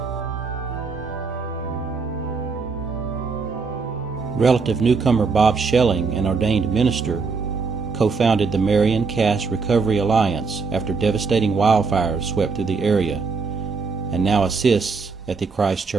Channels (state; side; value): quieter; left; 4.7 dB